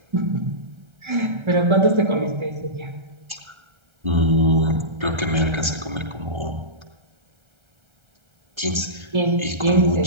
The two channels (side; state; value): left; late; 1.3 ms